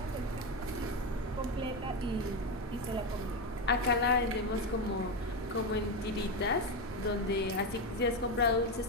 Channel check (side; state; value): both; normal; correlation 0.11